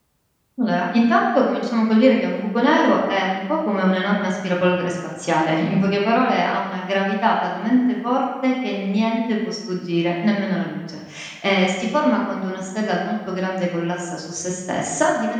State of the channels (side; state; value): both; identical; correlation 1.00